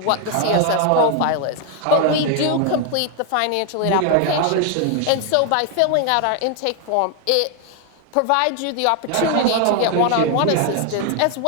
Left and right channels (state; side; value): different; both; correlation 0.01